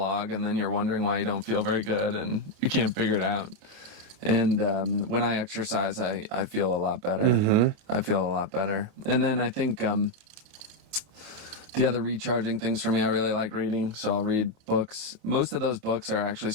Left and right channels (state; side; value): late; left; 28 ms